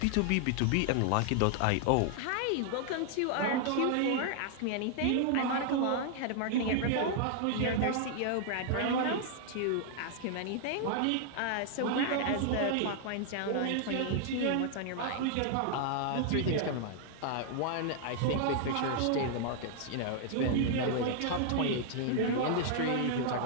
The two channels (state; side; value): different; both; correlation 0.00